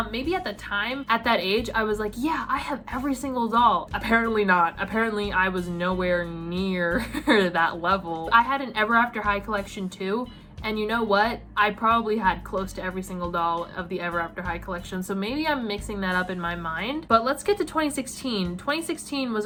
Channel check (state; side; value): identical; both; correlation 1.00